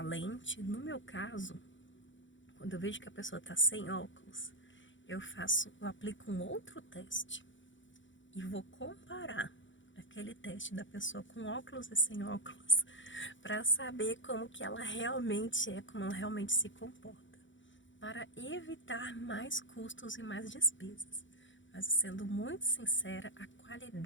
No meu caso, quando eu vejo que a pessoa está sem óculos, eu aplico um outro teste e vou comparar aquele teste da pessoa com óculos e sem óculos para saber como que ela realmente é, como ela realmente se comporta, para evitar mais custos e mais despesas. Mas sendo muito sincera, a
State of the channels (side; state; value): right; late; 0.55 ms